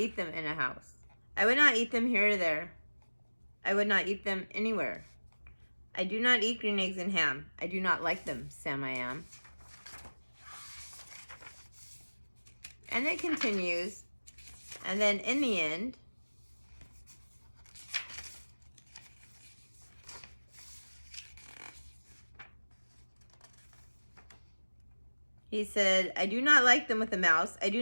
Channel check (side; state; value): both; inverted; correlation -1.00